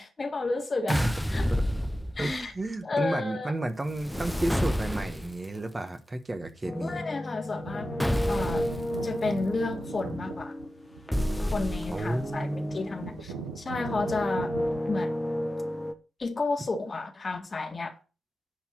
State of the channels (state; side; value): normal; both; correlation 0.93